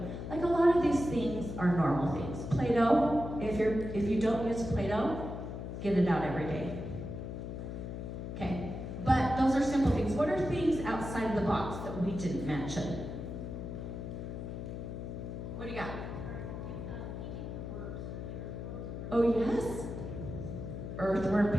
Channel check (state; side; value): noise; left; hum, 7 dB below the sound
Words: Like a lot of these things are normal things. Play-Doh, if you don't use Play-Doh, get it out every day. Okay, but those are simple things. What are things outside the box that we didn't mention? What do you got? Oh yes, earthworm